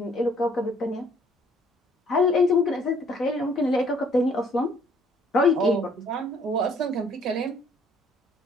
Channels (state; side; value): normal; both; correlation 0.61